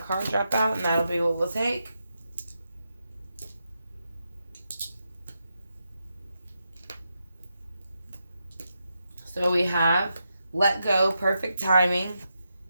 drop out, and that'll be what we'll take. So we have let go, perfect timing,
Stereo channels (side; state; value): both; inverted; correlation -0.85